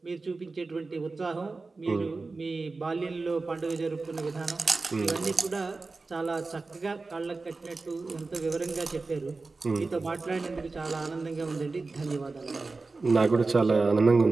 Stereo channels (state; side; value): quieter; left; 3.8 dB